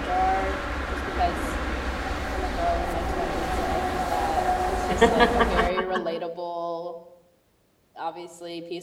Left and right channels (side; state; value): both; identical; correlation 1.00